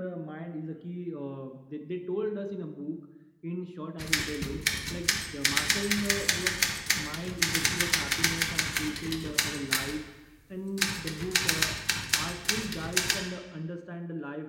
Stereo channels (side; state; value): both; identical; correlation 1.00